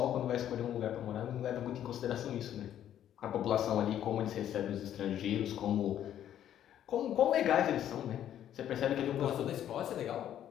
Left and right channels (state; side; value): quieter; right; 10.8 dB